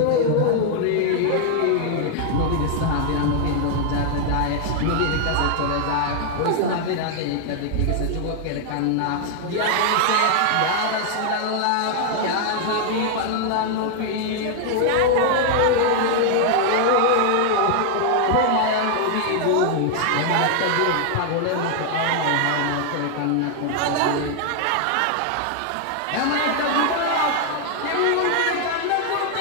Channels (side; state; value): both; different; correlation 0.00